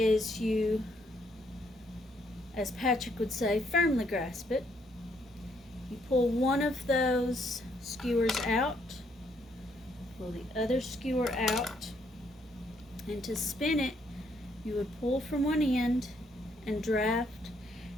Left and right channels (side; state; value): both; normal; correlation 0.71